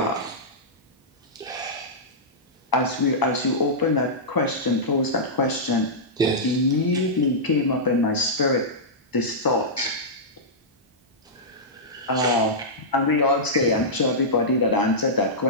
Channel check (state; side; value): normal; both; correlation -0.13